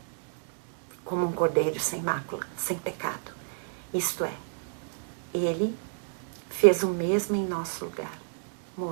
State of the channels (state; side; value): silent; left; digital silence